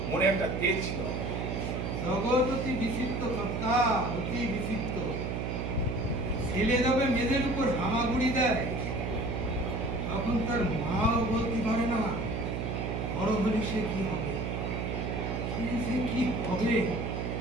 মনে একটা তেজ ছিল। জগৎ অতি বিচিত্র কর্তা, অতি বিচিত্র। ছেলে যাবে মেয়েদের উপর হামাগুড়ি দেয়, তখন তার মাও বলতে পারে না বড় হলে সে কি হবে, সে কি হবে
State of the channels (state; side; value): noise; right; hum, 2 dB below the sound